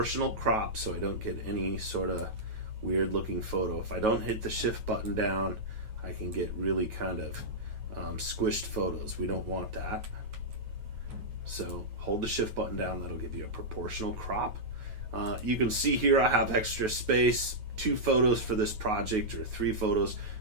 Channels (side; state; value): left; late; 9.3 ms